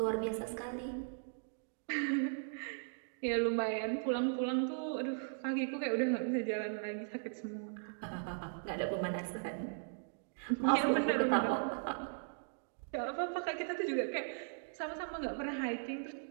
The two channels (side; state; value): left; silent; digital silence